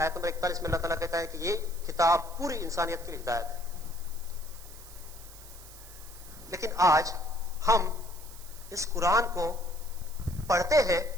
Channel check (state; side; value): noise; right; hiss, 18 dB below the sound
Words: نمبر 41 میں اللہ تعالیٰ کہتا ہے کہ یہ کتاب پوری انسانیت کے لیے ہدایت ہے. لیکن آج ہم اس قرآن کو پڑھتے ہیں